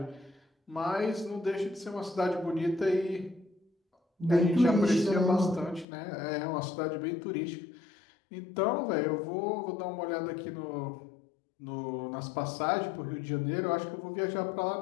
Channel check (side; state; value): right; drops out; at 5.9 s